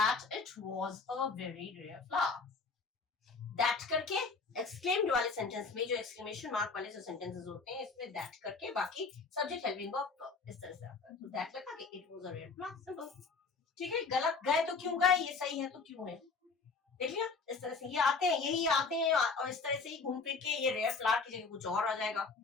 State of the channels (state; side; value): quieter; right; 4.5 dB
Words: it was a very rare flower, that करके एक्सक्लेम्ड वाले सेंटेंस में जो एक्सक्लेमेशन मार्क वाले जो सेंटेंसेस होते हैं इसमें दैट करके बाकी सब्जेक्ट हेल्पिंग वर्ब इस तरह से आता है, तो दैट लगा के it was a rare flower, simple. ठीक है, गलत गए तो क्यों गए, ये सही है तो क्यों है, देख लिया, इस तरह से ये आते हैं, यही आते हैं, और इस तरह से ही घूम फिर के ये रेयर फ्लावर की जगह कुछ और आ जाएगा,